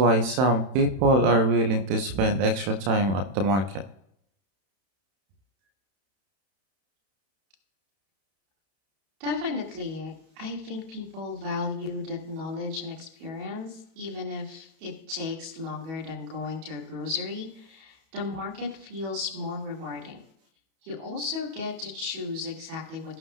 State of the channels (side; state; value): left; late; 31 ms